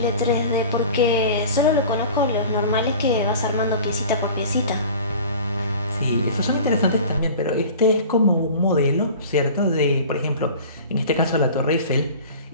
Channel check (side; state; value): both; inverted; correlation -0.40